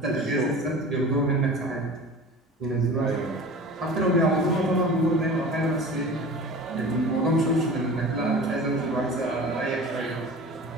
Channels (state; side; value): normal; both; correlation 0.38